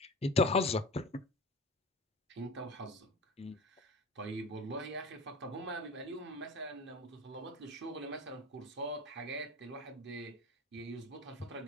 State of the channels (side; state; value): both; normal; correlation 0.33